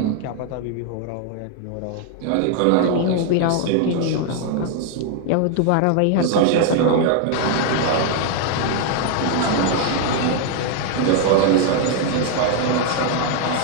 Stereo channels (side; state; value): both; different; correlation 0.00